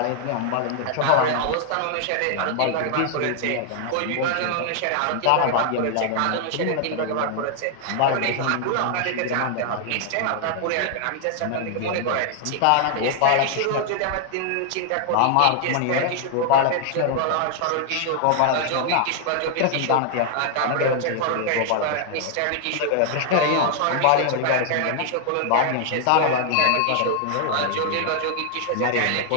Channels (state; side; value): different; both; correlation 0.00